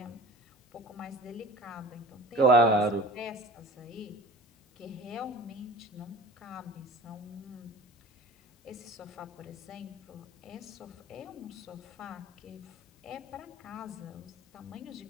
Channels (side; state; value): both; normal; correlation 0.40